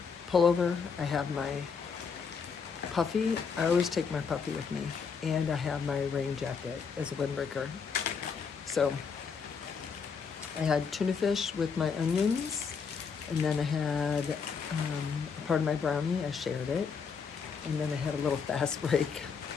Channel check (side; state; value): right; quieter; 5.8 dB